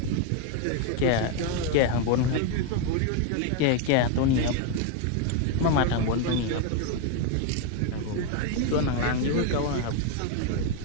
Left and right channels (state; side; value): different; both; correlation 0.01